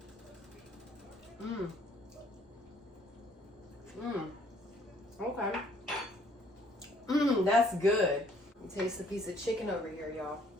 Okay. That's good. Taste the piece of chicken over here, y'all.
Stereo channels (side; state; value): both; normal; correlation 0.62